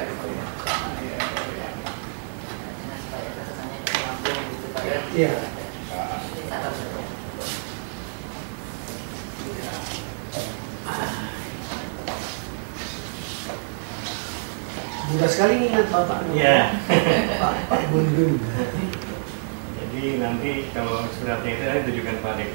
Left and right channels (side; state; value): left; silent; digital silence